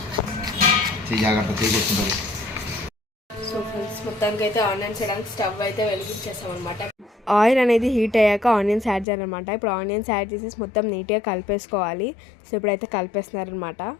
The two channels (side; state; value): right; drops out; at 9.1 s